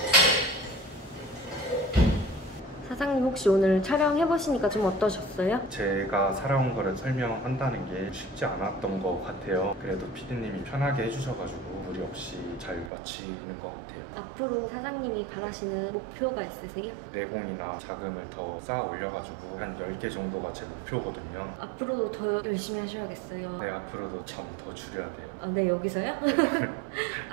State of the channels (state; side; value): drops out; left; at 12.9 s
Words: 사장님 혹시 오늘 촬영해보시니까 좀 어떠셨어요? 제가 살아온 거를 설명한다는 게 쉽지 않았던 것 같아요. 그래도 PD님이 편하게 해주셔가지고 무리 없이 잘 마치는 것 같아요. 앞으로 사장님이 바라시는 목표가 있으세요? 내공이나 자금을 더 쌓아 올려가지고 한 10개 정도가 제 목표거든요. 앞으로도 더 열심히 하셔야겠어요. 네, 앞으로도 점 더 줄여야 돼요. 아, 네, 여기서요?